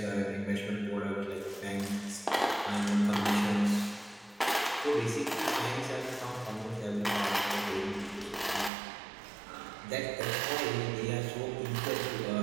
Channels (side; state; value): left; drops out; at 8.7 s